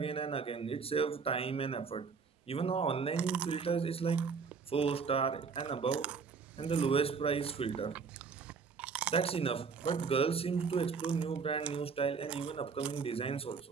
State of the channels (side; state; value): left; quieter; 5.4 dB